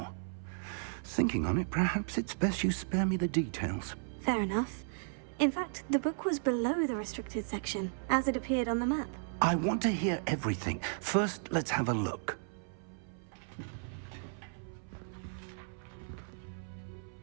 Thinking on it, perhaps it's best you spare me the details. Fair enough. In fact, the book was below the restricted section, as it appeared on the map. I want to hear everything. First, let's have a look.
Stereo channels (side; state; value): left; silent; 55 dB below the other